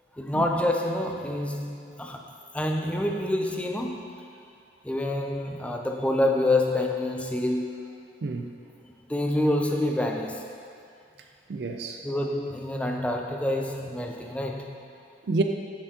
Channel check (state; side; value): normal; both; correlation 0.74